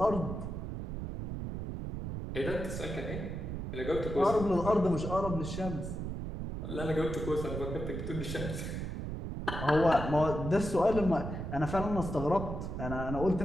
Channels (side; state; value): right; noise; rumble, 5 dB below the sound